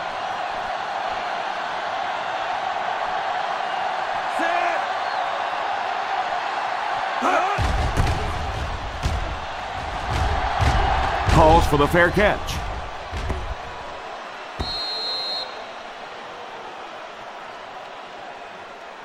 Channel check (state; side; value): identical; both; correlation 1.00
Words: calls for the fair catch.